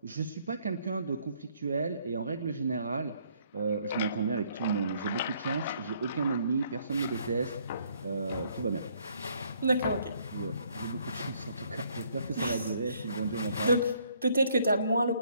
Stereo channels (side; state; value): both; inverted; correlation -0.66